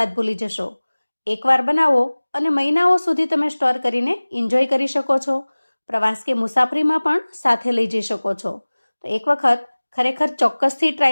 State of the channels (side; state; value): both; inverted; correlation -1.00